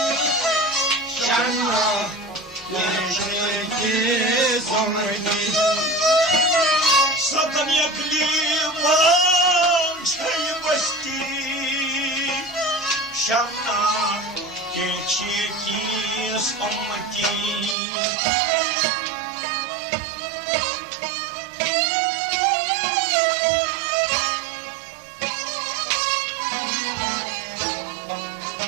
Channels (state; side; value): drops out; left; at 17.8 s